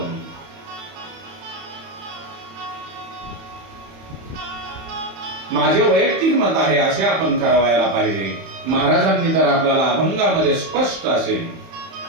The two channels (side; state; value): left; late; 31 ms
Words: माझे वैयक्तिक मत आहे असे आपण करावायला पाहिजे. महाराजांनी तर आपल्याला अभंगामध्ये स्पष्ट असे